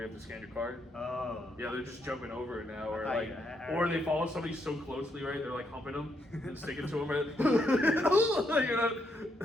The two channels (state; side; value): normal; both; correlation 0.77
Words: have to scan your card. Oh. Yeah, they're just jumping over it now, or I- like, I- or they follow somebody so closely, right? They're like humping them and sticking to them, right?